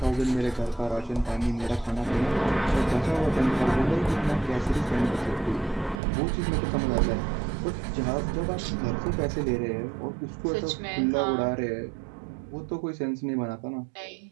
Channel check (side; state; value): left; drops out; at 6.0 s